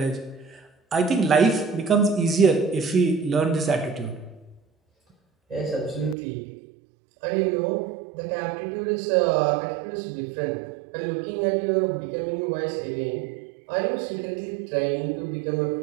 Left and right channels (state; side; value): drops out; left; at 6.2 s